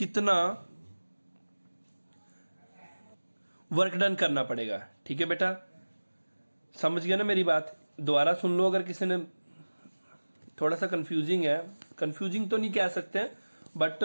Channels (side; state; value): both; inverted; correlation -1.00